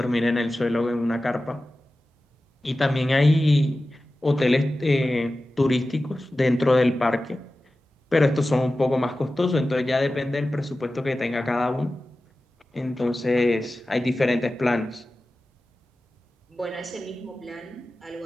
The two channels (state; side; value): normal; both; correlation 0.95